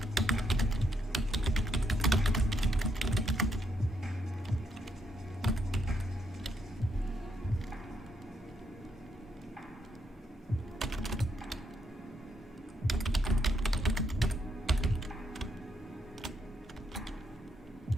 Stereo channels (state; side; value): normal; both; correlation 0.77